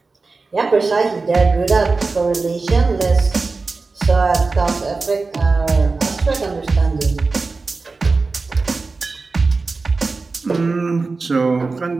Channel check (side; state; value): left; quieter; 3.9 dB